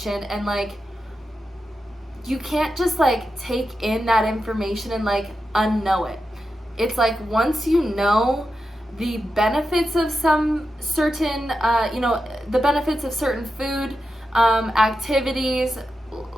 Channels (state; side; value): normal; both; correlation 0.89